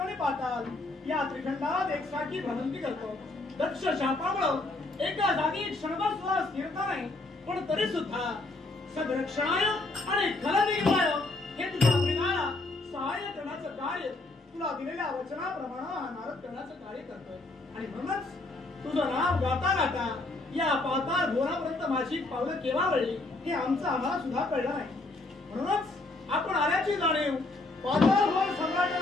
आणि पाताल या त्रिखंडात एकसारखी भ्रमंती करतो. दक्ष शापामुळे एका जागी क्षणभर सुद्धा स्थिरता नाही, पण तरी सुद्धा सदरक्षणाय आणि खलनिर्वाय हे तुझ्या प्रेमाला सहाय्य करण्याचं कार्य तुला दिलेल्या वचनाप्रमाणे हा नारद करण्याचं कार्य करतोय. आणि म्हणूनच तुझं नाव गाता गाता या पाताळ घोरापर्यंत माझी पावलं केव्हा वळली हे आम्हाला सुद्धा कळलं नाही. म्हणूनच आपण आल्याची जाणीव पाताळ घोर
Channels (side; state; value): right; quieter; 3.1 dB